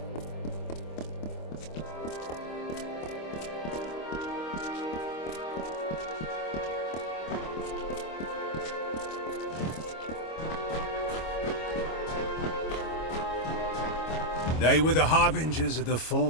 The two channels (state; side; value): late; right; 25 ms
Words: They were the harbingers of the